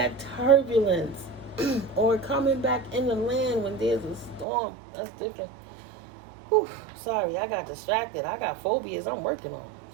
turbulence, or coming back in the land when there's a storm, that's different. Sorry, I got distracted. I got phobias I'm working on.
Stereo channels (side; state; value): left; drops out; at 4.5 s